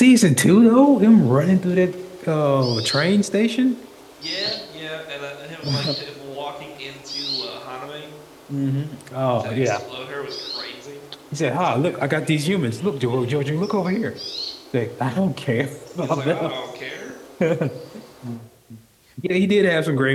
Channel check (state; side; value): identical; both; correlation 1.00